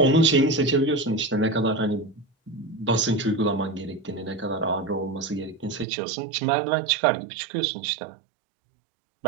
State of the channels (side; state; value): left; drops out; at 5.9 s